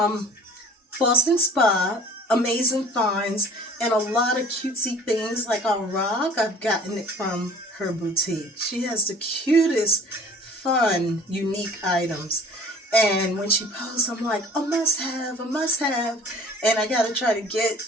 Boston Spa, amazing finds, and a lot of cutesy things like a rock. I've gotten it from her boutique. She has the cutest, fun, unique items. And when she posts, I'm like, a must have, a must have. And I got to try to get,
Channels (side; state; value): both; normal; correlation 0.48